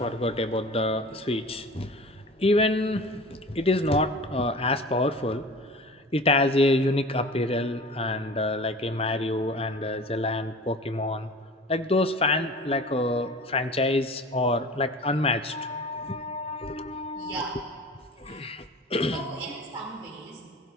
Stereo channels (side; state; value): both; normal; correlation 0.39